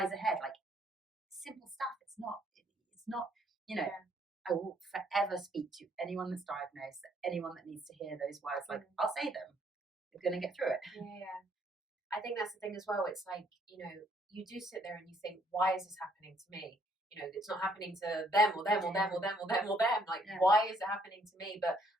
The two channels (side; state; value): both; normal; correlation 0.67